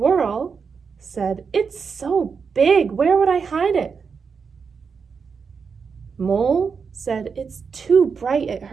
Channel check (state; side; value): quieter; left; 5.7 dB